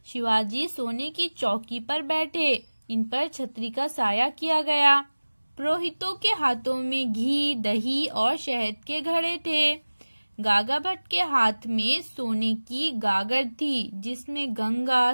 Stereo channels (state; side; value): inverted; both; correlation -1.00